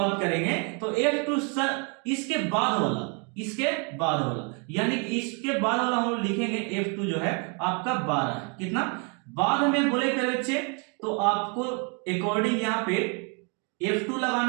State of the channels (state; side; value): quieter; left; 35.8 dB